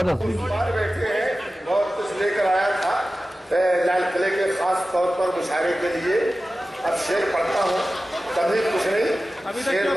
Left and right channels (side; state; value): both; normal; correlation 0.95